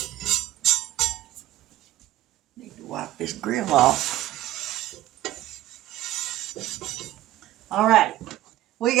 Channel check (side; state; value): left; quieter; 14.9 dB